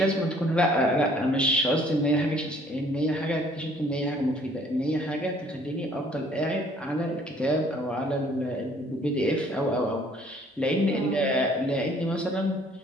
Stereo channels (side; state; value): both; normal; correlation 0.59